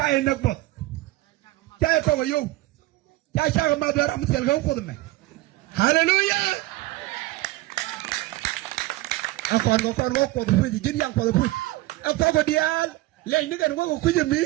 nak bot jaay ko yo jaay sa ma dara am sel ga ko me hallelujah akon ko fu jin yang ko fu akon ko dial le ni gan ko ku jemi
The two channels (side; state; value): left; quieter; 18.2 dB